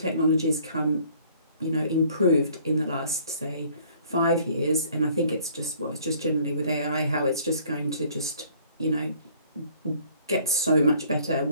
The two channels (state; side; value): inverted; both; correlation -0.57